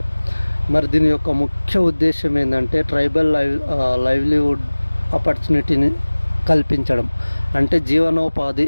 మరి దీని యొక్క ముఖ్య ఉద్దేశం ఏంటంటే ట్రైబల్ లైవ్లీవుడ్ ఆపర్చునిటీని కల్పించడం. అంటే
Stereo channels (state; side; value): inverted; both; correlation -1.00